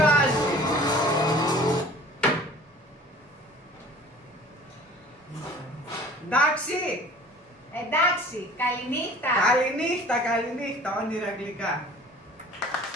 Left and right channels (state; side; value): normal; both; correlation 0.47